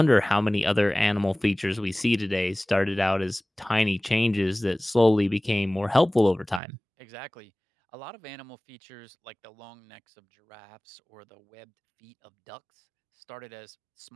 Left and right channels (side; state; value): left; drops out; at 6.6 s